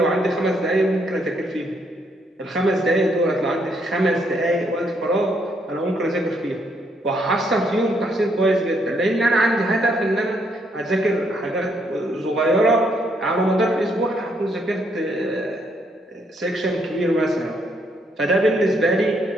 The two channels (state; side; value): normal; both; correlation 0.73